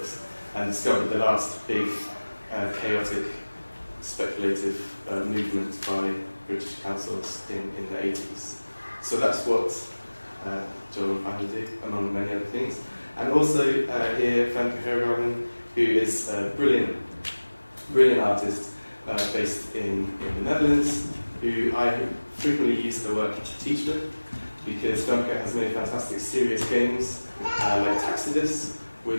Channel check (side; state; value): both; inverted; correlation -1.00